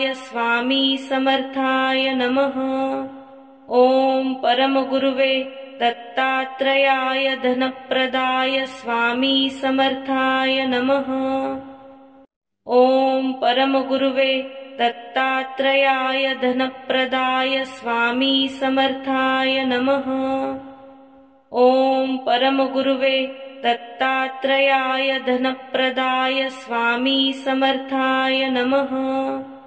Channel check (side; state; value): both; identical; correlation 1.00